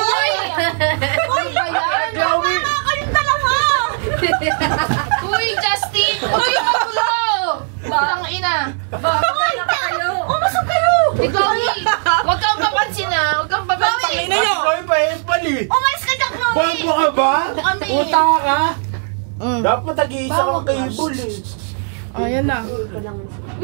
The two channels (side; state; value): left; silent; 58 dB below the other